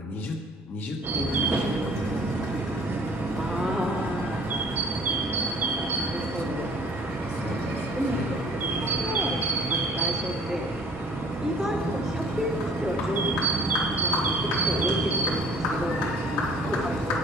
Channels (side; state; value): both; normal; correlation 0.52